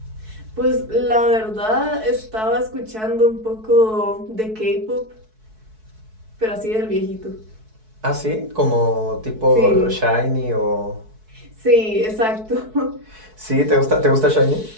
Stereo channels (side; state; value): left; late; 4.6 ms